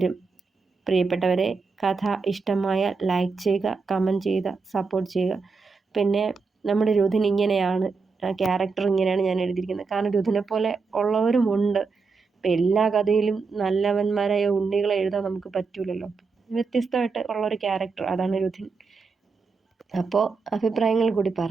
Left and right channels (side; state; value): left; quieter; 4.7 dB